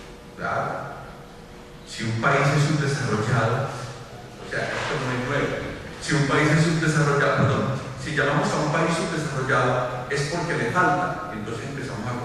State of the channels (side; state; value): both; identical; correlation 1.00